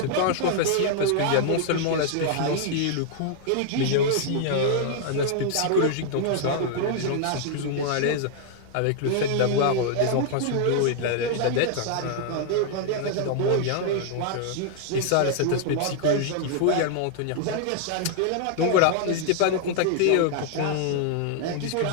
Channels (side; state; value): both; different; correlation 0.00